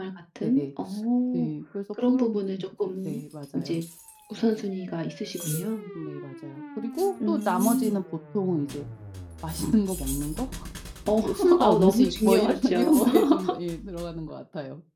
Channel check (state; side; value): identical; both; correlation 1.00